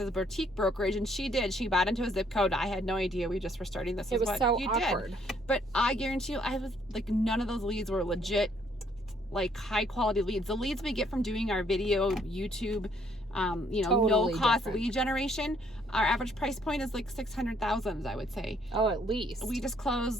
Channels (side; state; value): both; normal; correlation 0.66